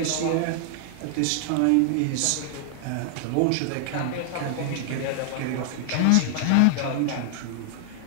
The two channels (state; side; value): different; both; correlation 0.00